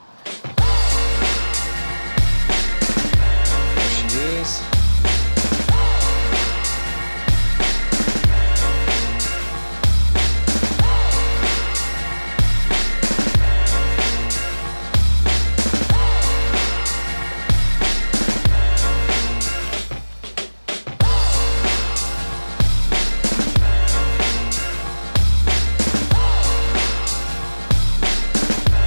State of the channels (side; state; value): both; inverted; correlation -1.00